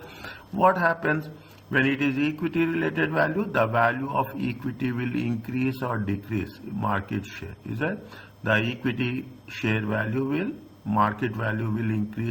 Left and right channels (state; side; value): identical; both; correlation 1.00